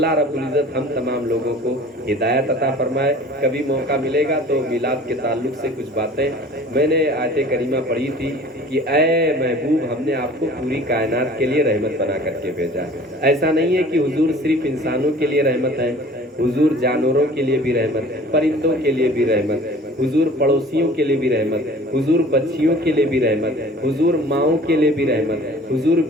رب العزت ہم تمام لوگوں کو ہدایت عطا فرمائے. کبھی موقع ملے گا تو میلاد کے تعلق سے کچھ باتیں, میں نے آیت کریمہ پڑھی تھی کہ اے محبوب ہم نے آپ کو پوری کائنات کے لیے رحمت بنا کر کے بھیجا. ایسا نہیں ہے کہ حضور صرف انسانوں کے لیے رحمت ہے, حضور جانوروں کے لیے بھی رحمت ہے, پرندوں کے لیے بھی رحمت ہے, حضور پڑوسیوں کے لیے بھی رحمت ہے, حضور بچیوں کے لیے بھی رحمت ہے, حضور ماؤں کے لیے بھی رحمت ہے, حضور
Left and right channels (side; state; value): both; normal; correlation 0.47